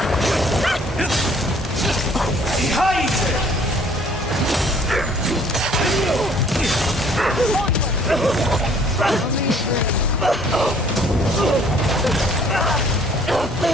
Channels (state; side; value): normal; both; correlation 0.58